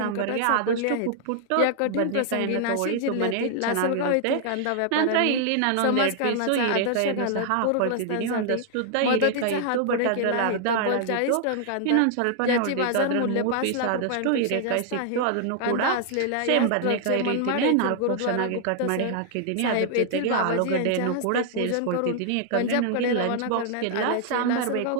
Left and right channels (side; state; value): both; different; correlation -0.01